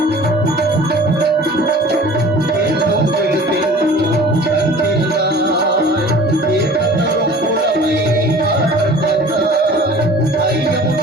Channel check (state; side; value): normal; both; correlation 0.45